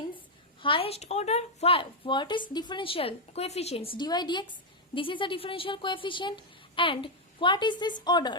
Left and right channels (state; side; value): normal; both; correlation 0.00